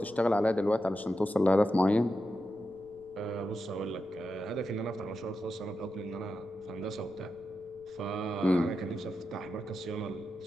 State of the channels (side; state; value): right; noise; rumble, 27 dB below the sound